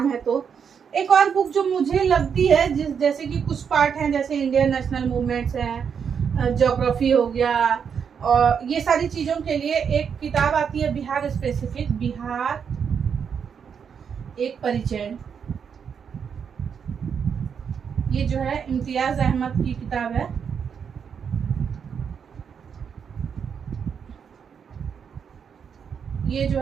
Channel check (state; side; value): quieter; left; 7.0 dB